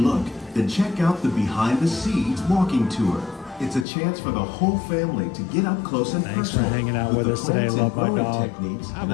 then check out the Behind the Scenes walking tour. It's a chance for the whole family to get up close and Thanks for personal hanging out with the us today. plants Love and my growing dog. techniques Have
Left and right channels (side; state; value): right; drops out; at 3.9 s